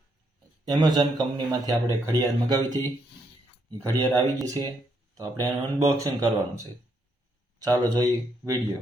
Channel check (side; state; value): both; normal; correlation 0.75